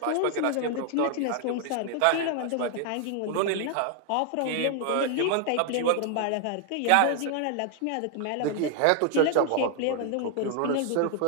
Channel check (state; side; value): different; both; correlation 0.00